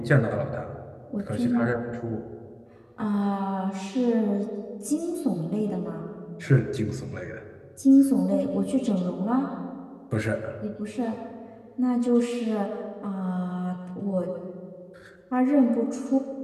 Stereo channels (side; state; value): both; identical; correlation 1.00